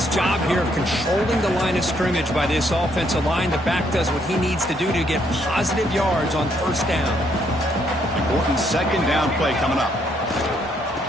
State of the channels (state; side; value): normal; both; correlation 0.71